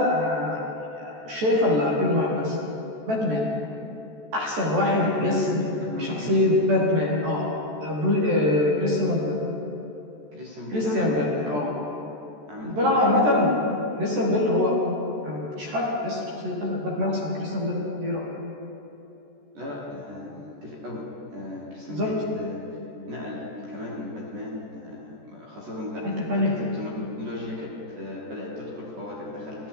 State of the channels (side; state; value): left; late; 14 ms